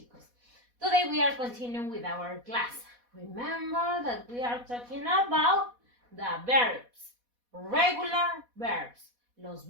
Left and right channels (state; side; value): late; left; 4.1 ms